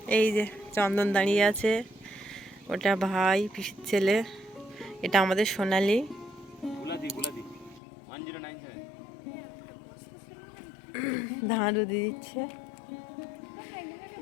এই যে চন্দন দাঁড়িয়ে আছে, ওটা ভাই পিসির ছেলে, এটা আমাদের সোনালি। ধান রুদি দিচ্ছে।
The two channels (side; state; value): right; drops out; at 7.8 s